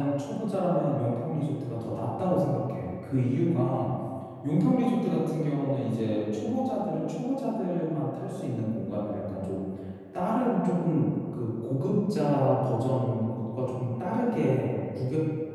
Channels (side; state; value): both; identical; correlation 1.00